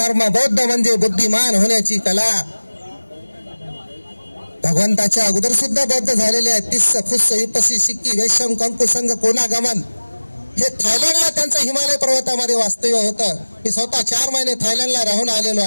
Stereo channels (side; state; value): both; inverted; correlation -1.00